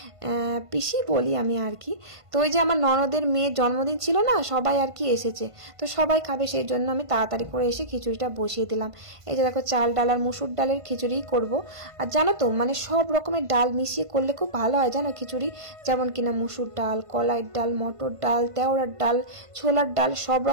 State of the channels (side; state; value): left; late; 1.5 ms